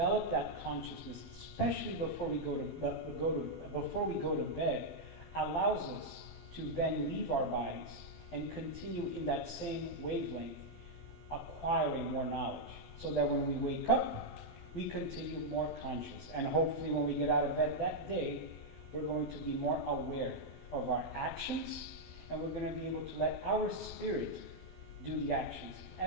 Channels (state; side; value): late; right; 12 ms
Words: that consciousness, especially before we go to bed, allows us to then leave our bodies and continue in that same wavelength, acquiring more knowledge, so that when we wake up, we continue more conscious. And hopefully when we get out of bed that day, we're going to be more aware of our actions, and we're going to be able to let our spirit do the actions,